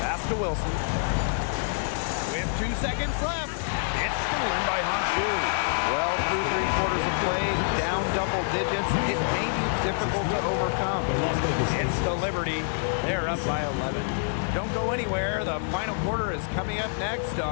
to Wilson. With 2 seconds left. It's stolen by Honshu. Well, through 3 quarters of play, down double digits. It may be difficult to overcome. It's the Liberty. They're up by 11. Don't go anywhere. The final quarter is coming up next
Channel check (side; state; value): right; silent; digital silence